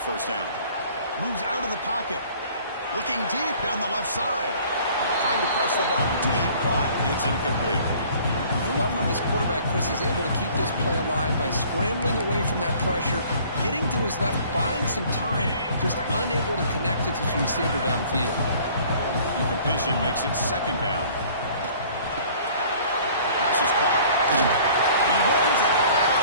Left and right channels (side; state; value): both; inverted; correlation -0.53